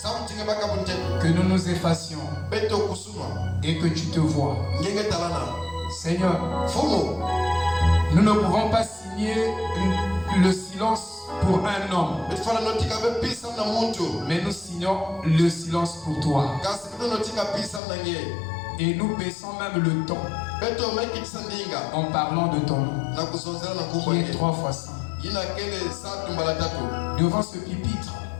que nous nous effacions et que tu te vois. Seigneur, nous ne pouvons pas signer le silence pour un homme, mais nous signons le silence pour toi. Et nous baissons même le ton en parlant de ton nom, qui est 3 fois saint. Devant ce pupitre,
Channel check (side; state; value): right; drops out; at 17.8 s